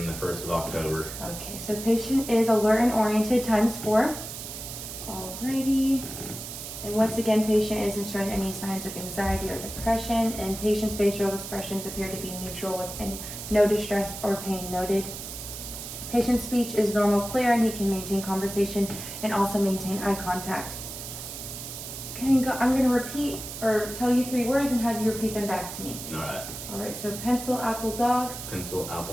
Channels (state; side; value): noise; right; hiss, 9 dB below the sound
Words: the 1st of October. Okay, so patient is alert and oriented ×4. Alrighty. And once again, patient isn't showing any signs of anxiety or depression, and patient's facial expressions appear to be neutral with no distress or pain noted. Patient's speech is normal, clear, and he can maintain conversation and also maintain eye contact. Can you go? I'm going to repeat or tell you 3 words and have you repeat them back to me. Alright, so pencil, apple, dog. Pencil,